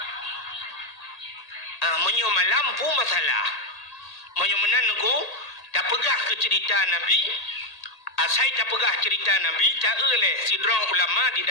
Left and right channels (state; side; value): late; right; 1.8 ms